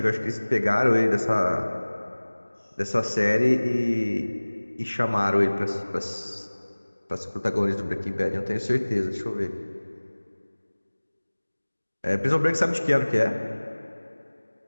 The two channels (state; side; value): inverted; both; correlation -1.00